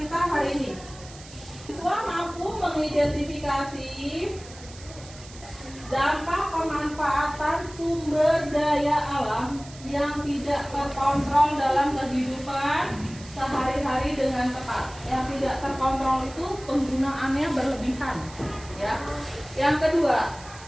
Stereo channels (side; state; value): right; noise; hiss, 18 dB below the sound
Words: hari ini, siswa mampu mengidentifikasi dampak pemanfaatan sumber daya alam yang tidak terkontrol dalam kehidupan sehari-hari dengan tepat. Yang tidak terkontrol itu penggunaannya berlebihan, ya. Yang kedua,